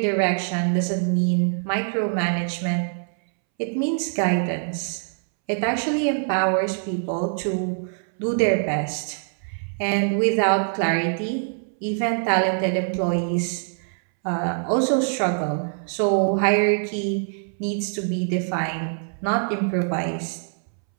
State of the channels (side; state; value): left; silent; 63 dB below the other